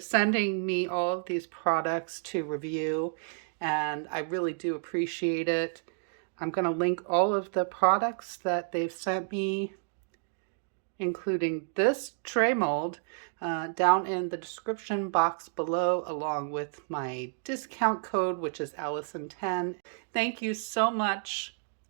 me all of these products to review, and I really do appreciate it. I'm going to link all of the products that they've sent me, including this tray mold, down in the description box below, along with my discount code, which is Allison10. Thank you so much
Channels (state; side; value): silent; left; digital silence